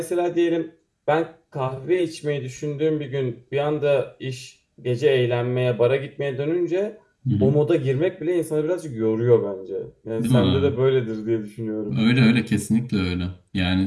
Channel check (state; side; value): identical; both; correlation 1.00